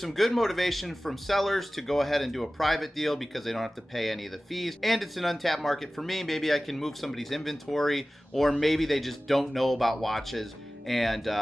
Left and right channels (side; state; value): both; normal; correlation 0.97